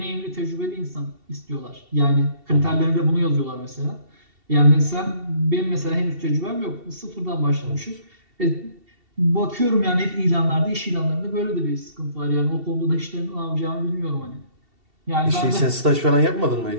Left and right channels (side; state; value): left; late; 2.7 ms